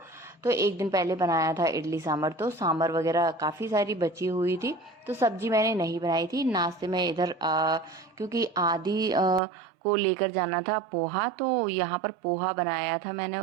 तो एक दिन पहले बनाया था इडली सांभर, तो सांभर वगैरह काफ़ी सारी बची हुई थी, तो सब्जी मैंने नहीं बनाई थी। नाश्ते में इधर क्योंकि आदि को लेकर जाना था पोहा, तो यहाँ पर पोहा बनाया था मैंने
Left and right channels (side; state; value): left; drops out; at 9.4 s